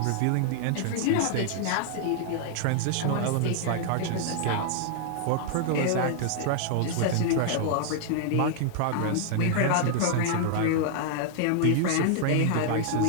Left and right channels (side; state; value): both; different; correlation -0.01